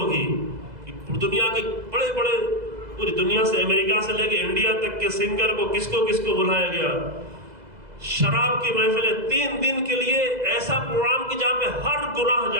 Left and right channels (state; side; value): late; left; 2.0 ms